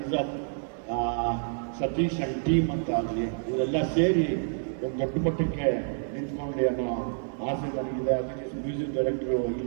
of Satish and team ಅಂತ ಆಗಲಿ, ಇವರೆಲ್ಲ ಸೇರಿ ಒಂದು ದೊಡ್ಡ ಮಟ್ಟಕ್ಕೆ ನಿಂತ್ಕೊಂಡು ಅನ್ನೋ ಆಸೆ ನನಗಿದೆ. ಅದಕ್ಕೆ ಮ್ಯೂಸಿಕ್ ಡೈರೆಕ್ಟ್ರು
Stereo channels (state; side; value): silent; left; digital silence